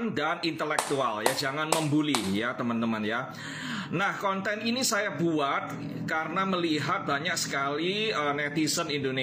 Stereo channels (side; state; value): both; identical; correlation 1.00